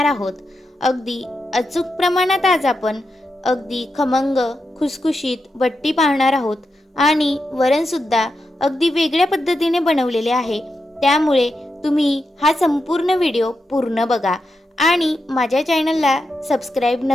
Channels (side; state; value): both; normal; correlation 0.87